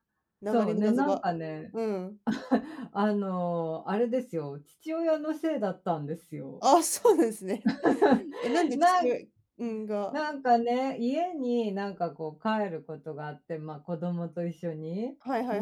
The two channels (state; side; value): identical; both; correlation 1.00